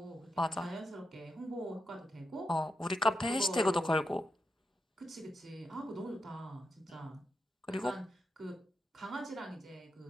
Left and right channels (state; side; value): normal; both; correlation 0.85